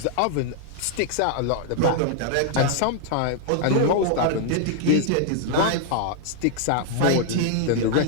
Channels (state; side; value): different; both; correlation 0.00